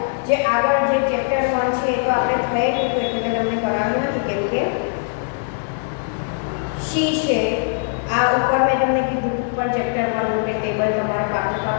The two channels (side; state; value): right; silent; digital silence